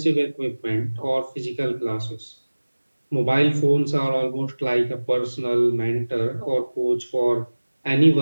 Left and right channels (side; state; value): both; inverted; correlation -1.00